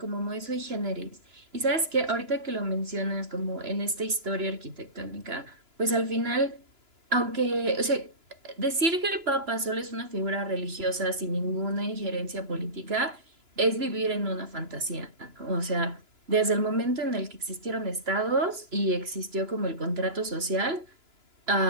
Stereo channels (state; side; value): late; left; 2.9 ms